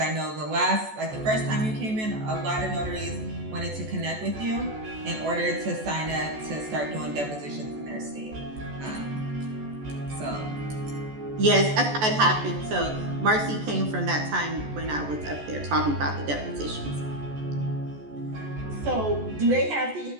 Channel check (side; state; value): left; late; 14 ms